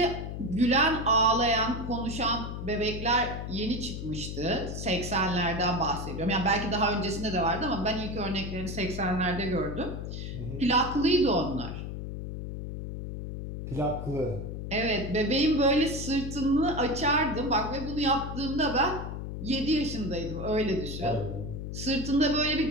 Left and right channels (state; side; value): noise; left; hum, 6 dB below the sound